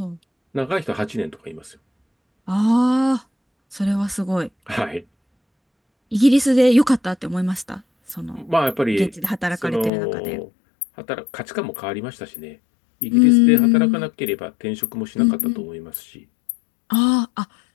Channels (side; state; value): right; drops out; at 9.9 s